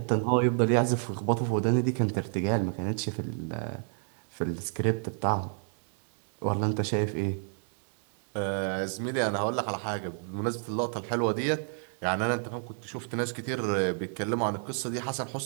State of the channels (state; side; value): silent; left; 58 dB below the other